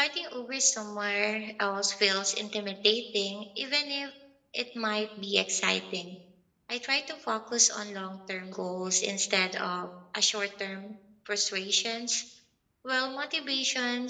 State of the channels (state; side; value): identical; both; correlation 1.00